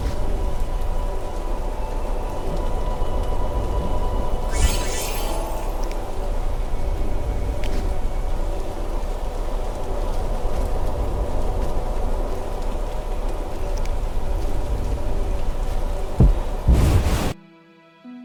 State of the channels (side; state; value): both; identical; correlation 1.00